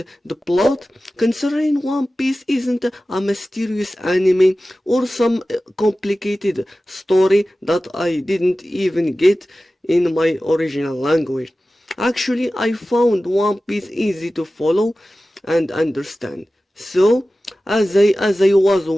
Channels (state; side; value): normal; both; correlation 0.96